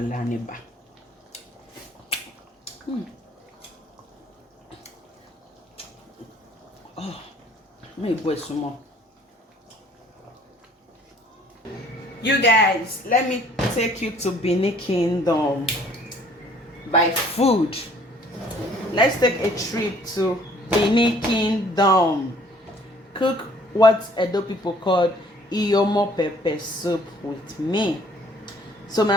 and eba. Oh, maybe boy some more. You guys, let me take you to Benin Kingdom by food. Let's take a trip to Benin Kingdom. Cook what Edo people call Iyomo pepper soup with me. So my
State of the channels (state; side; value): normal; both; correlation 0.58